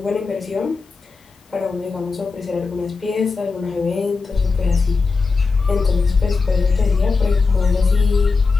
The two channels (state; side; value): quieter; right; 4.4 dB